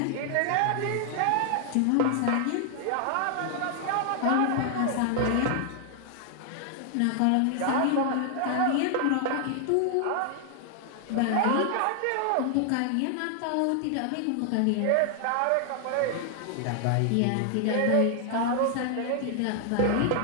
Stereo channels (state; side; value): different; both; correlation 0.00